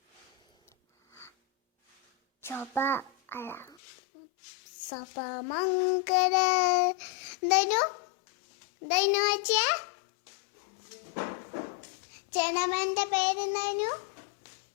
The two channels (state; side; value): drops out; right; at 3.8 s